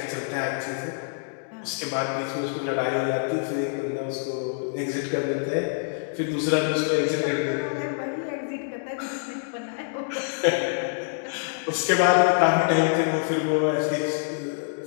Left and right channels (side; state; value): right; silent; digital silence